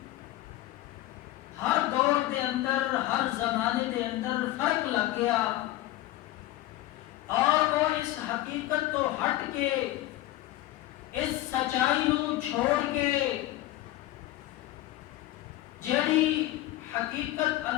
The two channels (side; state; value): right; quieter; 15.7 dB